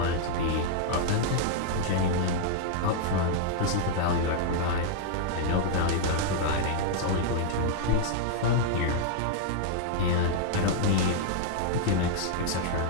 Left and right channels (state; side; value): different; both; correlation -0.01